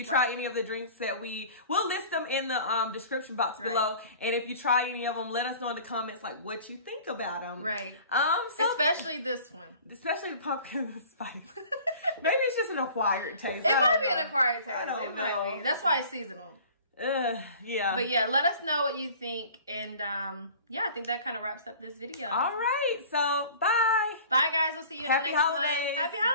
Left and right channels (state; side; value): inverted; both; correlation -0.45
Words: try any of the drinks that we'll list them in the description box below. And if you try any of them, let us know in the comments like what you think about them. Right. So, especially this one. Especially the pumpkin spice. Maybe it's just an acquired taste. It might be an acquired taste. It might be. That's why it's seasonal. Yeah. But yeah, let us know what you think. And yeah, I think that kind of wraps up this video. All right. So bye. Bye guys. We'll see you in the next one. Happy holidays. Happy